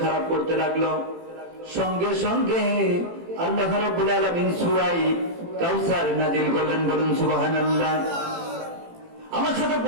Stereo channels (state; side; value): late; left; 18 ms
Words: খারাপ করতে লাগলো, সঙ্গে সঙ্গে আল্লাহ রাব্বুল আলামিন সূরা কাউসার নাযিল করলেন। বলুন সুবহানাল্লাহ। আমার সাথে